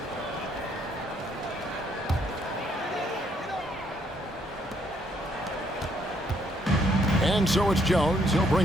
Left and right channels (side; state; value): both; normal; correlation 0.70